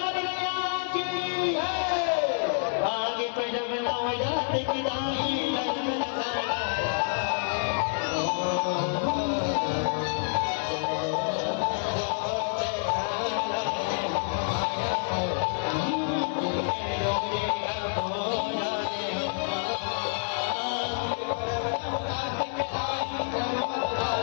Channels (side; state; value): right; silent; 59 dB below the other